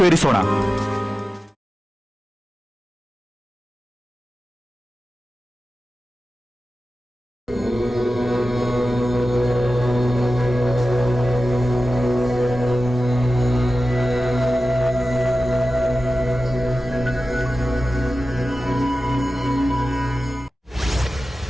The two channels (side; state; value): both; normal; correlation 0.94